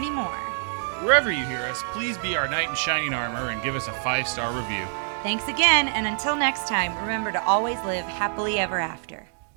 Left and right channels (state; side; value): silent; left; digital silence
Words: more. Wherever you hear us, please be our knight in shining armor and give us a 5-star review. Thanks again, and until next time, remember to always live happily ever after.